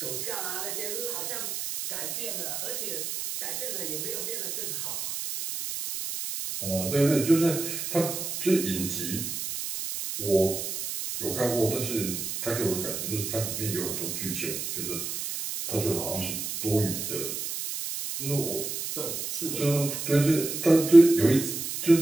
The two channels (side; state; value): right; noise; hiss, 4 dB below the sound